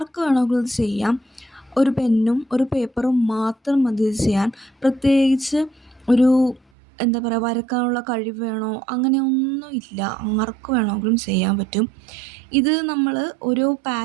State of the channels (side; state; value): left; drops out; at 6.6 s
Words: വേണമെങ്കിലും ഇത് ചെയ്യാം. ഒരു പെന്നും ഒരു പേപ്പറും മാത്രം മതി ഇത് ചെയ്യാൻ. പ്രത്യേകിച്ച് ഒരു എന്താ പറയുക, വരക്കാനുള്ള കഴിവ് വേണോ അങ്ങനെയൊന്നും ഇല്ല. ആർക്ക് വേണമെങ്കിലും ചെയ്യാൻ പറ്റും. ഇത് നമ്മൾ ഓരോ